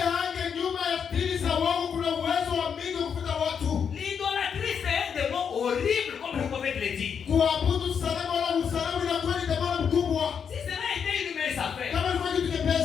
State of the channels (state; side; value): quieter; right; 7.1 dB